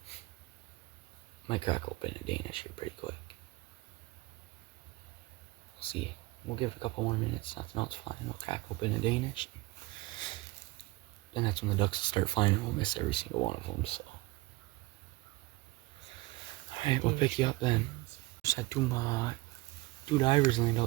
Might crack open a Danish here pretty quick. We'll see. We'll give it a couple more minutes. Nothing else flying. We'll crack open a Danish. Then that's when the ducks will start flying and we'll miss every single one of them, so. Alright, we'll pick you up then. Just had two divers land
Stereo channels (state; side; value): quieter; left; 21.4 dB